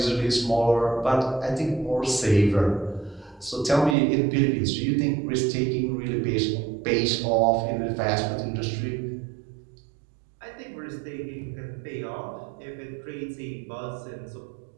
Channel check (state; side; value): drops out; left; at 4.0 s